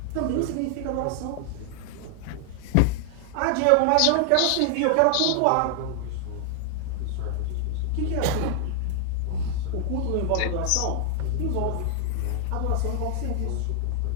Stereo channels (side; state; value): both; different; correlation 0.00